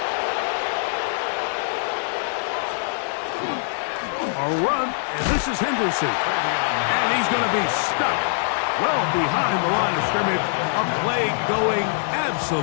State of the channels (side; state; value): right; silent; 63 dB below the other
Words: A run, and this is Henderson. And he's going to be stuck well behind the line of scrimmage. A play going